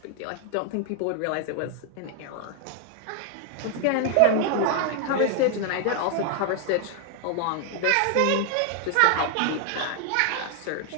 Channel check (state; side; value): different; both; correlation 0.00